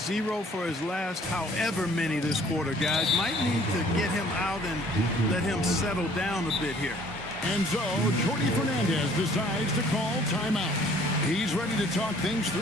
0 for his last however many this quarter, guys. Might need to get him out and let him settle down a bit here. And so, Jordi Fernandez decides to call timeout. He's ready to talk things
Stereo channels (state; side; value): normal; both; correlation 0.57